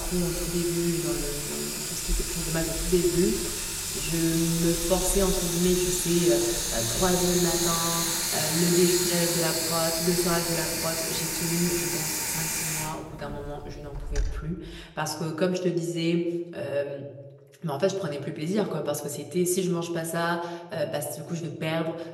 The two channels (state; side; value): identical; both; correlation 1.00